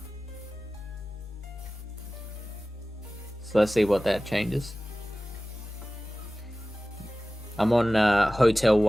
So let's see what that changes. I'm on hotel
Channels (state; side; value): normal; both; correlation 0.97